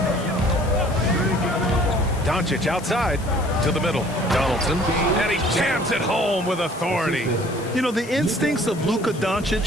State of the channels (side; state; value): left; noise; hiss, 19 dB below the sound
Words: Doncic outside to the middle. Donaldson. And he jams it home with authority. You know, the instincts of Luka